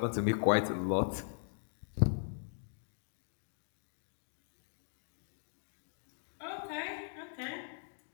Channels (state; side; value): silent; right; digital silence